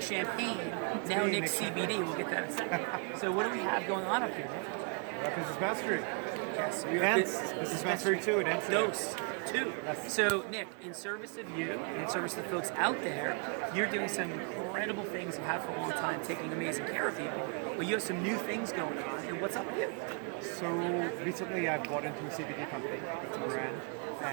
Champagne, now Nick CBD. We'll get that in a second. So what do we have going on up here, Nick? We're at Business Mastery. Yes, we are Business Mastery 2 in Amsterdam. Dose 2. Yes. So Nick, in service of you and in service of the folks out there, you're doing some incredible things you have for a long time, taking amazing care of people. But you have some new things going on. And what's up with you? So recently I bought into a CBD company, it's a brand,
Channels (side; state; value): left; quieter; 37.0 dB